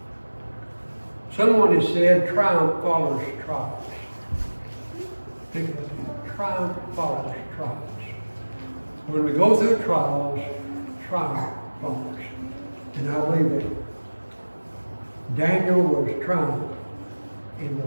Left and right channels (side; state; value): both; inverted; correlation -1.00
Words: Someone has said triumph follows trials. Think about that. Triumph follows trials. When we go through trials, triumph follows. And I believe that. Daniel was triumphed in the